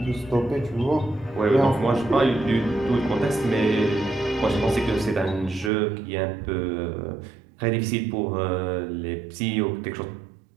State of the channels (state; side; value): drops out; left; at 5.7 s